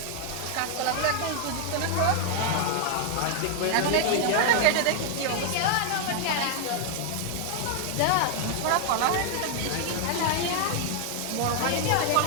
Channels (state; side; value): different; both; correlation 0.00